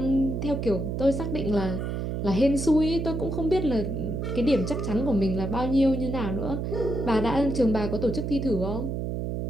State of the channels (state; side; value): noise; right; hum, 3 dB below the sound